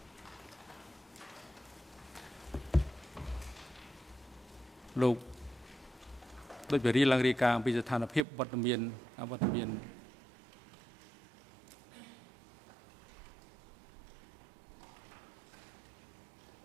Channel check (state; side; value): drops out; left; at 8.2 s